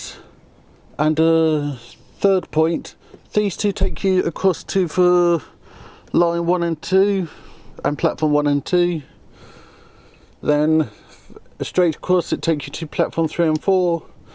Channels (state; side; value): identical; both; correlation 1.00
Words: and a 3rd point. These 2 take you across to the line 1 and 2 and platform 1 and 2. Then straight across it takes you to platform 3 and 4.